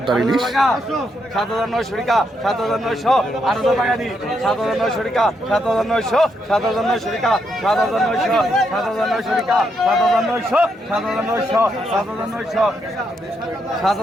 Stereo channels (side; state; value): both; normal; correlation 0.79